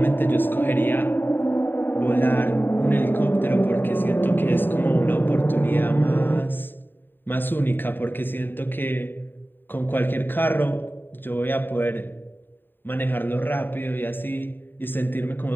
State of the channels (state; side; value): late; right; 0.094 ms